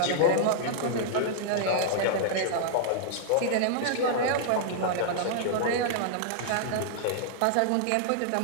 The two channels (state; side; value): different; both; correlation -0.01